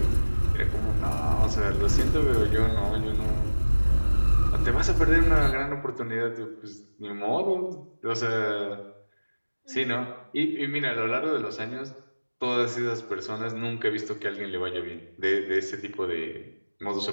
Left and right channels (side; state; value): both; inverted; correlation -1.00